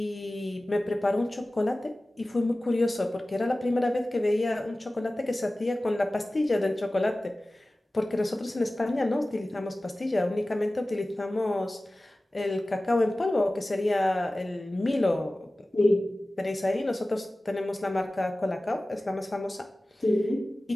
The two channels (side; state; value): both; normal; correlation 0.97